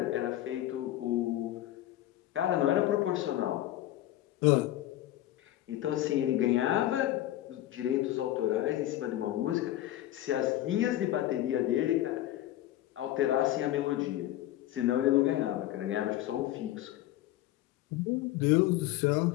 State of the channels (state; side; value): quieter; right; 14.2 dB